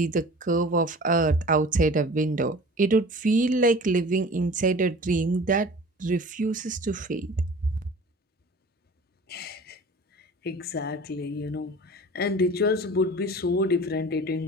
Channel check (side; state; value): both; normal; correlation 0.42